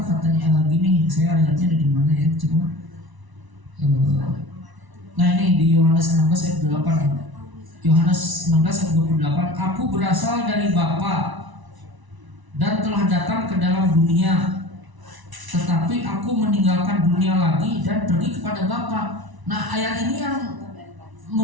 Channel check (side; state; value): left; late; 1.0 ms